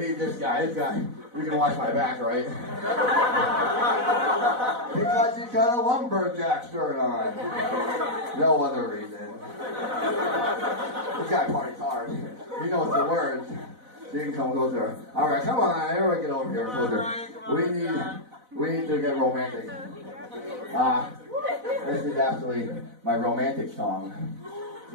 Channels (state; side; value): late; left; 4.0 ms